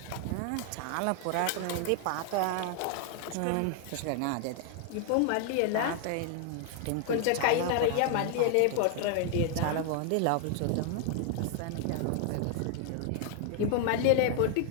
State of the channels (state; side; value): different; both; correlation 0.00